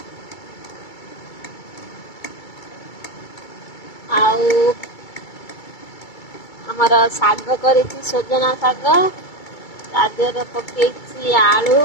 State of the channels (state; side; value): late; right; 2.3 ms